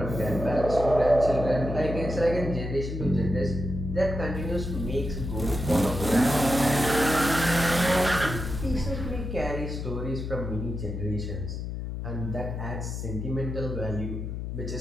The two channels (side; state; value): left; noise; hum, 5 dB below the sound